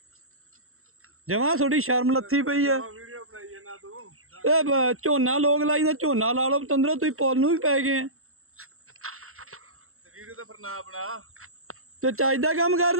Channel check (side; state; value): left; late; 0.62 ms